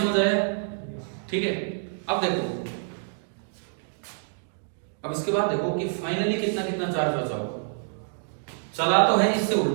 आया? ठीक है, अब देखो, अब इसके बाद देखो कि फाइनली कितना कितना चार्ज बचा होगा। चला तो है इससे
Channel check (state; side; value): silent; left; digital silence